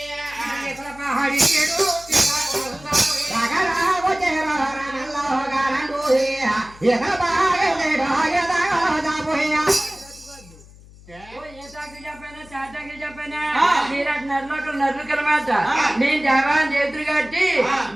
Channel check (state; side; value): noise; left; hum, 22 dB below the sound